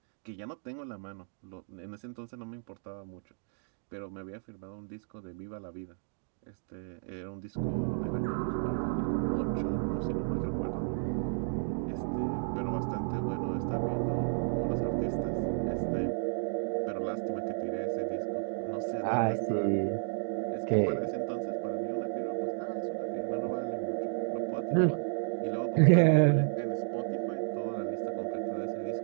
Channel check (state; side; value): silent; left; digital silence